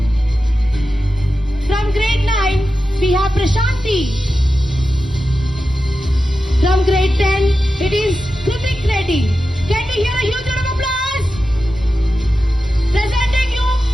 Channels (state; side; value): normal; both; correlation 0.92